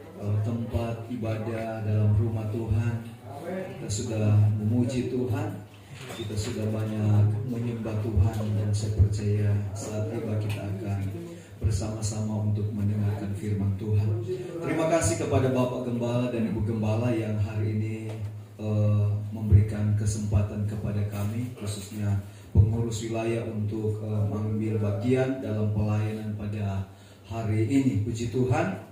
tempat ibadah, dalam rumah Tuhan. Kita sudah memuji Tuhan, kita sudah banyak menyembah Tuhan, dan saya percaya saat tiba kita akan bersama-sama untuk mendengarkan firman Tuhan. Terima kasih kepada Bapak Gembala dan Ibu Gembala yang hari ini memberikan kesempatan kepada kami, khususnya pengurus wilayah, untuk mengambil bagian dalam pelayanan pada hari ini. Puji Tuhan.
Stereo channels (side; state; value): both; identical; correlation 1.00